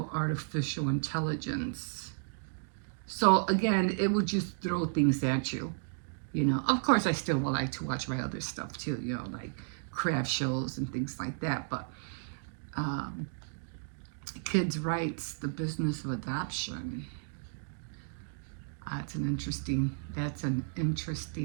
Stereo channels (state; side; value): silent; left; digital silence